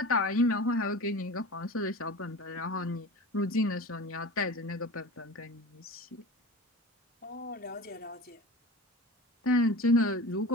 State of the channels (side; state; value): both; normal; correlation 0.34